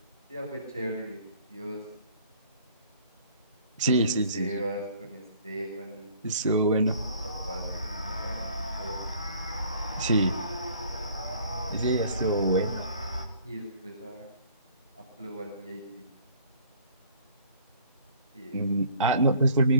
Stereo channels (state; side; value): inverted; both; correlation -0.55